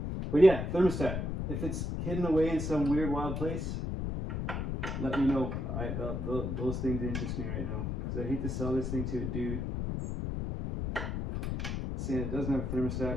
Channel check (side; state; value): left; noise; rumble, 2 dB below the sound